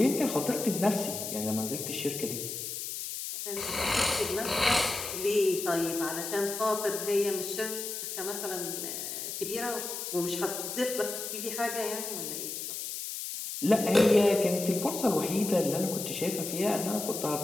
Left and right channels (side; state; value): left; noise; hiss, 6 dB below the sound